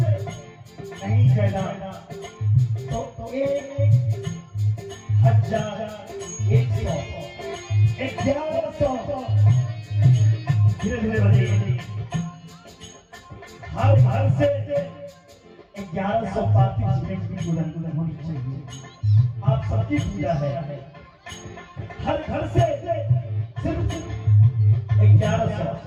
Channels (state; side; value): identical; both; correlation 1.00